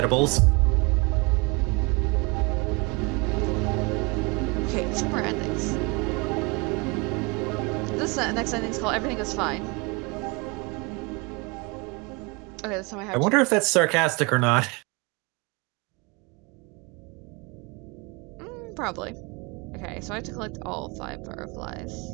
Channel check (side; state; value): left; quieter; 28.3 dB